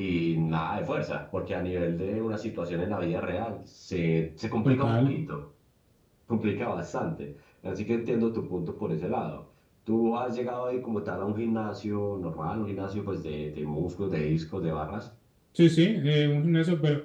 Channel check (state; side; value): identical; both; correlation 1.00